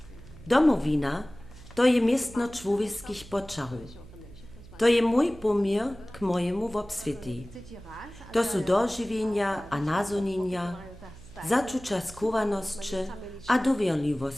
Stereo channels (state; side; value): noise; right; hum, 19 dB below the sound